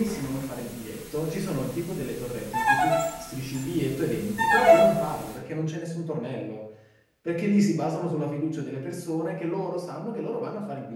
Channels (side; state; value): both; identical; correlation 1.00